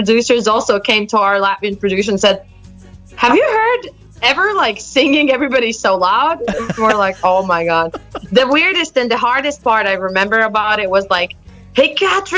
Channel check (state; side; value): identical; both; correlation 1.00